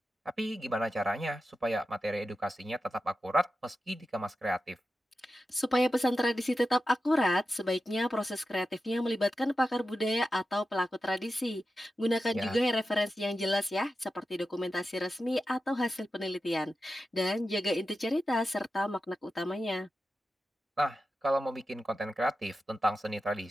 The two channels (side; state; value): both; normal; correlation 0.91